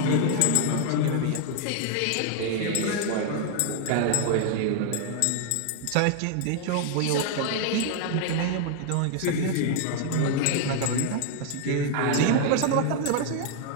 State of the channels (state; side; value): different; both; correlation 0.00